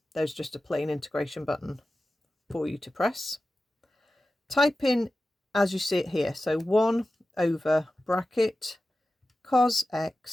there's just a plain integration button for you to press. Type in as you see it here, so 1 over bracket cos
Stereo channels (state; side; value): normal; both; correlation 0.94